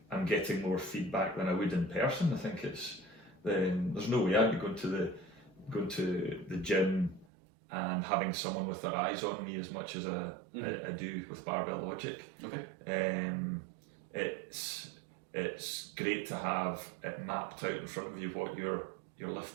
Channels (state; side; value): drops out; left; at 7.2 s